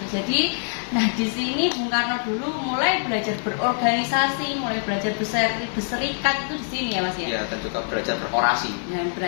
itu. Jadi, nah di sini Bung Karno dulu mulai belajar berorganisasi, mulai belajar berserikat itu di sini ya Mas ya. Iya, dan juga belajar berorasi. Dan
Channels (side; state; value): right; silent; 61 dB below the other